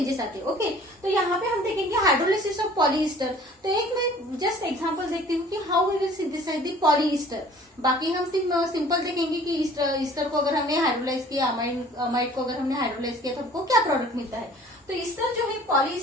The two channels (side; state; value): both; normal; correlation 0.50